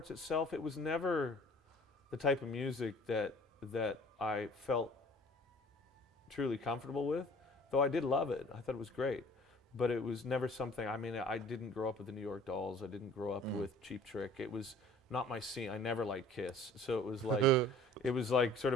itself, it was never the type of music that I felt truly comfortable with, though I did love it. I thought it was great. But it was never something, I mean, I didn't grow up with the New York Dolls. I didn't grow up with Cheap Trick. It was not my scene. I never liked Kiss. So it was like, it was like sort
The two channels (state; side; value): normal; both; correlation 0.50